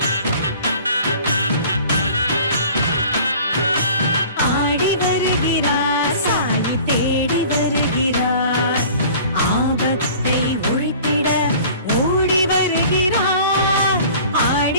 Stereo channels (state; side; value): inverted; both; correlation -0.46